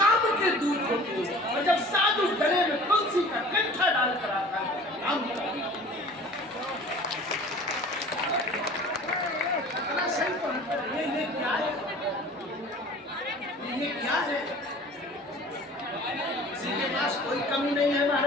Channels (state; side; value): normal; both; correlation 0.45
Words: के दूत होते हो, और जब साधु गले में तुलसी का कंठा डाल कर आता है काम ये क्या है? ये क्या है? किसी के पास कोई कमी नहीं है